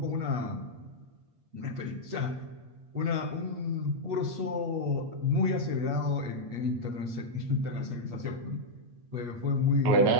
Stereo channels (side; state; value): left; late; 8.4 ms